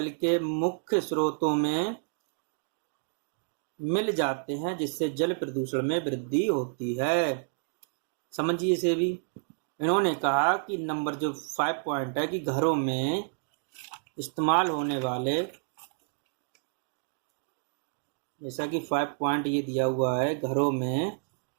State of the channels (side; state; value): left; silent; digital silence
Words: के मुख्य स्रोतों में मिल जाते हैं, जिससे जल प्रदूषण में वृद्धि होती है। समझिए इसे भी। इन्होंने कहा कि नंबर जो 5 पॉइंट है कि घरों में इस्तेमाल होने वाले, जैसा कि 5 पॉइंट ये दिया हुआ है, घरों में